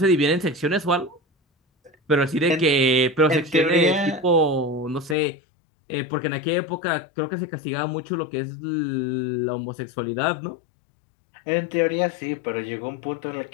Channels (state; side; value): drops out; right; at 5.2 s